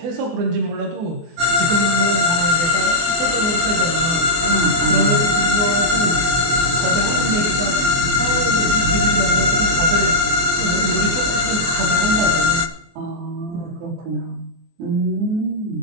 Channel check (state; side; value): late; left; 24 ms